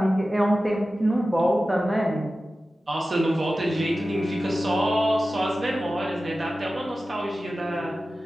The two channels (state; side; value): normal; both; correlation 0.95